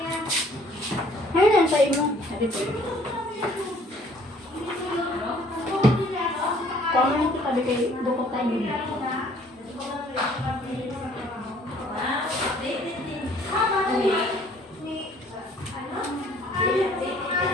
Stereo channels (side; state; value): both; normal; correlation 0.58